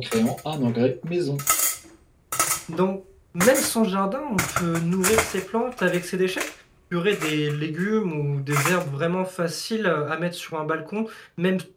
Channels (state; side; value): identical; both; correlation 1.00